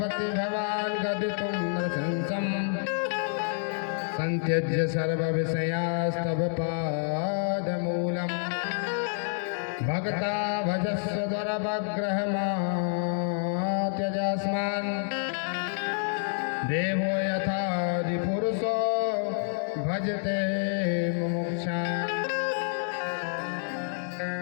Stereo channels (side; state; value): right; silent; digital silence